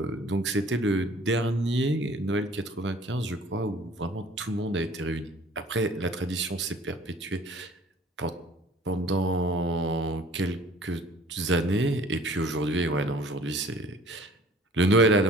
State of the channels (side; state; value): both; normal; correlation 0.51